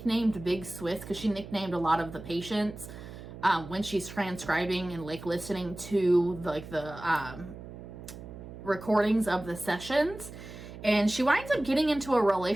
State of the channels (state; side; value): noise; right; hum, 13 dB below the sound